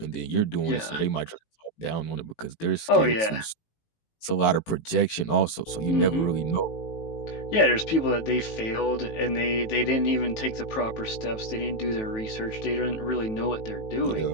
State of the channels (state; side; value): late; right; 18 ms